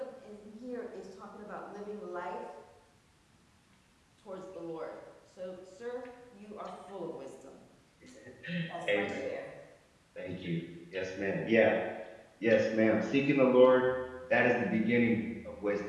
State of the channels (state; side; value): identical; both; correlation 1.00